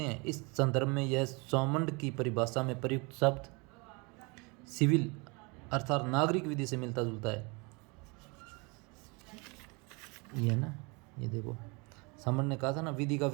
हैं। इस संदर्भ में यह सौमंड की परिभाषा में प्रयुक्त शब्द सिविल अर्थात नागरिक विधि से मिलता जुलता है। ये ना, ये देखो सामंड ने कहा था ना, विधि का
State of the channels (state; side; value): quieter; left; 29.0 dB